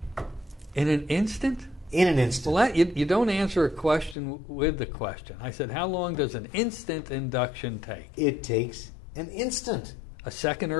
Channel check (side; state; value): right; drops out; at 4.2 s